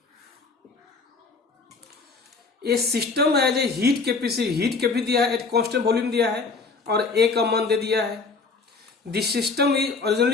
A system has a heat capacity दिया है, एट कांस्टेंट वॉल्यूम दिया है और ए का मान दे दिया है। This system is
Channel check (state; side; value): quieter; right; 4.3 dB